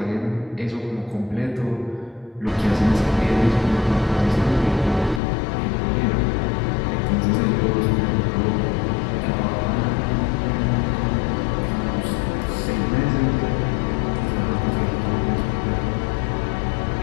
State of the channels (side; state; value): right; drops out; at 5.2 s